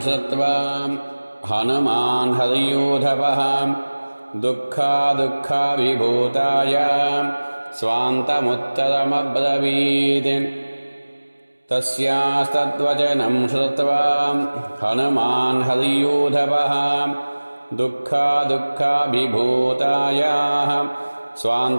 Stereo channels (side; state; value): both; inverted; correlation -1.00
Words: శ్రుత్వా హనుమాన్ హరియూధవః దుఃఖావిభూతాయ స్వాంతముత్తరమబ్రవీత్. తస్యాస్తద్వచనం శ్రుత్వా హనుమాన్ హరియూధవః దుఃఖావిభూతాయ